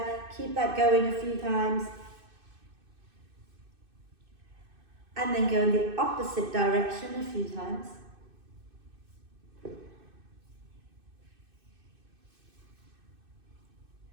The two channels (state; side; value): late; left; 2.6 ms